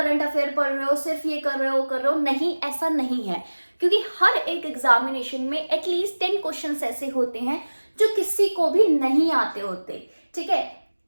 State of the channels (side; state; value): both; inverted; correlation -1.00